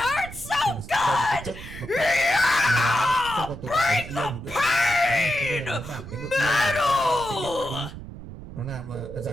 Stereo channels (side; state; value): right; noise; rumble, 13 dB below the sound